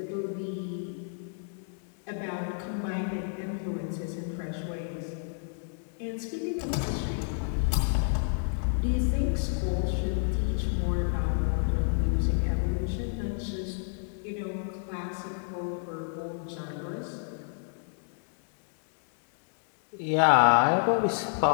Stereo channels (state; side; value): silent; right; digital silence